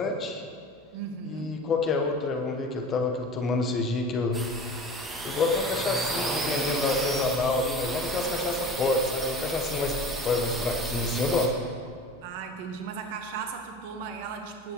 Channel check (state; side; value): normal; both; correlation 0.37